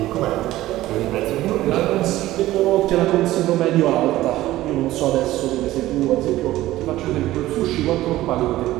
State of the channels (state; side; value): quieter; left; 15.8 dB